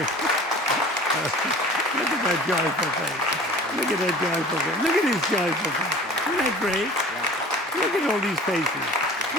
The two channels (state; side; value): normal; both; correlation 0.43